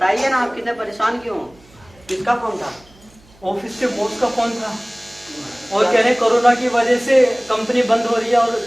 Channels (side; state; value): right; noise; hum, 27 dB below the sound